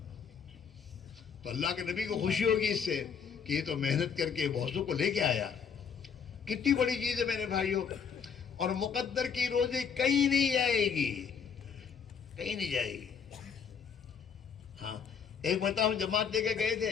تو اللہ کے نبی کو خوشی ہوگی اس سے کہ یہ تو محنت کر کے بہتوں کو لے کے آیا. کتنی بڑی چیز ہے میرے بھائیوں. اور مقدر کی روزی کہیں نہیں جائے گی, کہیں نہیں جائے گی. ہاں ایک بتاؤ, جماعت لے کے گئے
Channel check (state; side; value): quieter; right; 6.7 dB